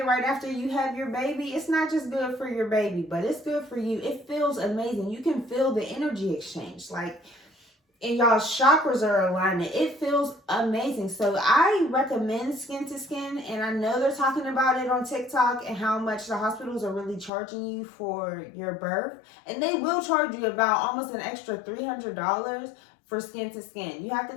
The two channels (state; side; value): drops out; right; at 17.3 s